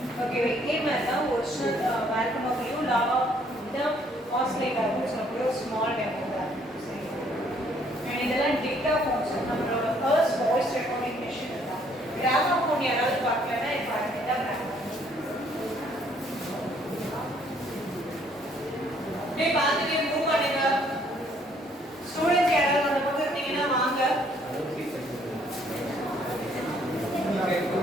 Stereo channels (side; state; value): both; normal; correlation 0.64